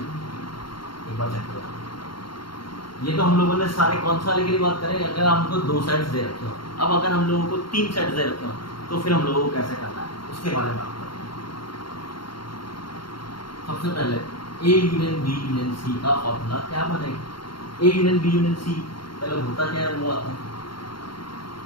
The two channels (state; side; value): late; right; 0.73 ms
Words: एक बार चेक करो। ये तो हम लोगों ने सारे कौन सा वाले के लिए बात करें अगर हमको दो सेट्स दे रखे हो। अब अगर हम लोगों को तीन सेट्स दे रखे हो तो फिर हम लोगों को कैसे करना है उसके बारे में बात करते हैं। सबसे पहले A union B union C का फॉर्मूला क्या बनेगा A union B union C पहले होता क्या है वो आता है